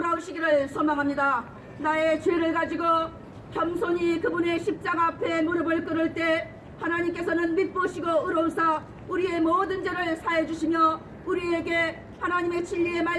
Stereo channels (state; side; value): identical; both; correlation 1.00